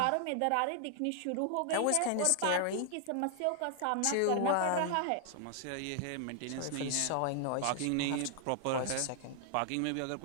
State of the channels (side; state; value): both; different; correlation 0.00